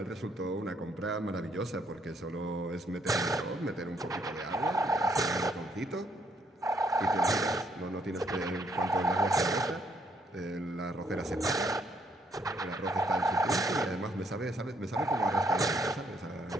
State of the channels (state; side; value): normal; both; correlation 0.70